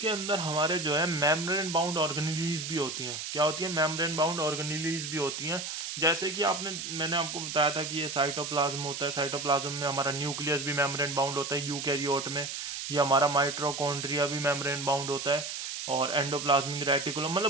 अंदर हमारे जो है मेम्ब्रेन बाउंड ऑर्गेनेलीज भी होती हैं। क्या होती है? मेम्ब्रेन बाउंड ऑर्गेनेलीज भी होती हैं। जैसे कि मैंने आपको बताया था कि ये साइटोप्लाज्म होता है, साइटोप्लाज्म में हमारा न्यूक्लियस भी मेम्ब्रेन बाउंड होता है यूकैरियोट में, ये हमारा माइटोकॉन्ड्रिया भी मेम्ब्रेन बाउंड होता है, और एंडोप्लाज्मिक रेटिकुलम,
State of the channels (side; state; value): right; noise; hiss, 6 dB below the sound